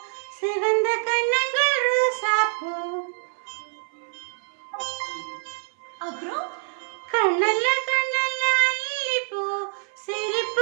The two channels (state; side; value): silent; left; 59 dB below the other